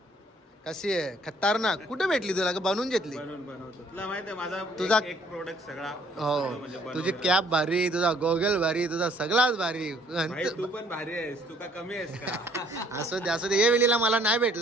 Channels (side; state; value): both; normal; correlation 0.61